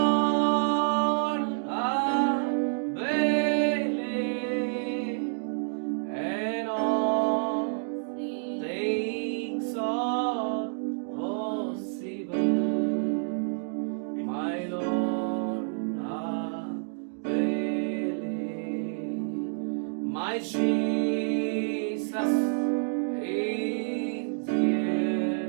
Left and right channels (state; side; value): silent; left; digital silence